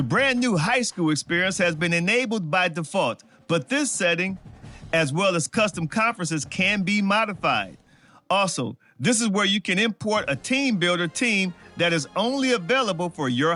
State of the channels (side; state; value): both; identical; correlation 1.00